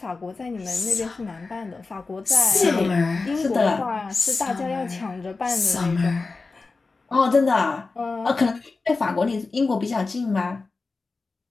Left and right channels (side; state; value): right; quieter; 3.9 dB